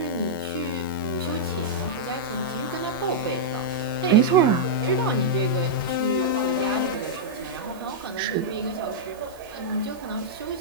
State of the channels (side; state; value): right; noise; hiss, 24 dB below the sound